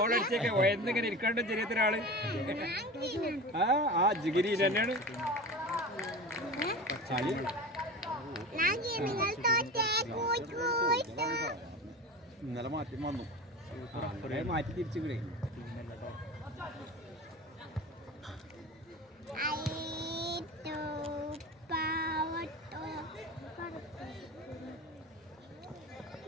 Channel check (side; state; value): both; normal; correlation 0.31